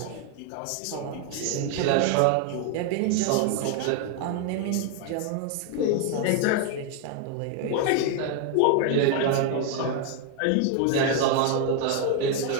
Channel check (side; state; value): both; different; correlation 0.01